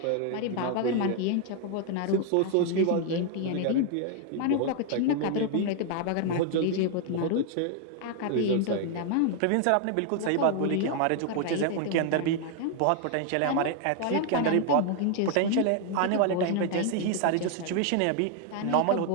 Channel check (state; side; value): different; both; correlation 0.00